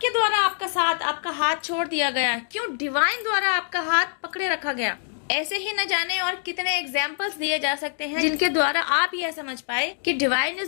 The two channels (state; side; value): silent; right; digital silence